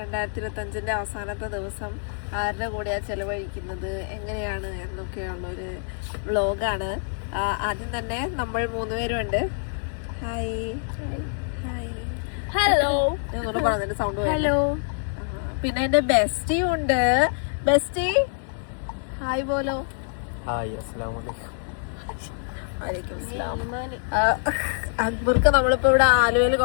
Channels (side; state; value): right; silent; digital silence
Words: അവസാനത്തെ ദിവസം ആരുടെ കൂടെയാ ചെലവഴിക്കുന്നത്, എങ്ങനെയാണ് എന്നൊക്കെയുള്ള ഒരു വ്ലോഗാണ്. ആദ്യം തന്നെ നമ്മൾ 3 പേരുണ്ട്. Hi hi hello. ഞാൻ പറഞ്ഞതിന്റെ സൗണ്ട്. ഹലോ. പിന്നെ എന്റെ ബെസ്റ്റിയും ഉണ്ട്. Bestie hi പോലോ. ഹായ്, അസ്സലാമു അലൈക്കും. അക്ബർക്ക് നമ്മളിപ്പോ ഇവിടെ ആലുവയിൽ